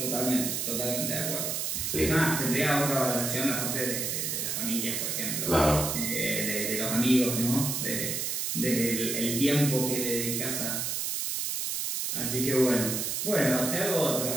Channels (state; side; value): noise; right; hiss, 1 dB below the sound